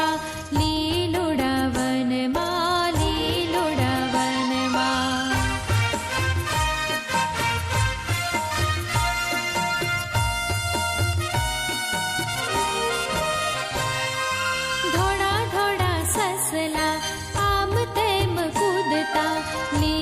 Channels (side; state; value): both; identical; correlation 1.00